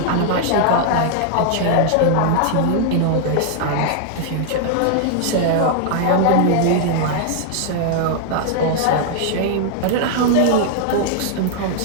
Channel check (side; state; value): both; different; correlation -0.01